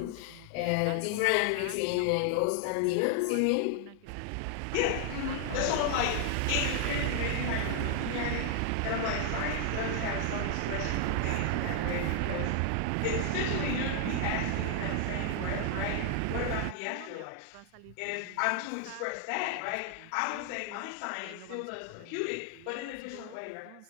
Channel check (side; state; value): both; different; correlation 0.00